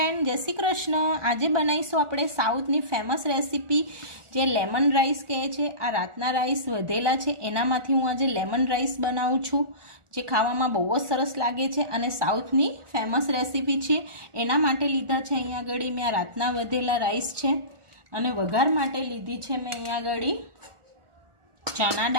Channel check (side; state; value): left; late; 1.4 ms